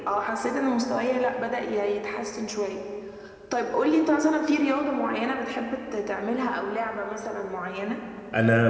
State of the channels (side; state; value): both; identical; correlation 1.00